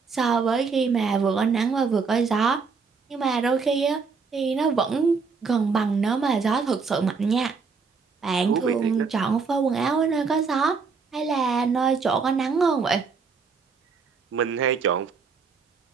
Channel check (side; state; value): left; quieter; 5.1 dB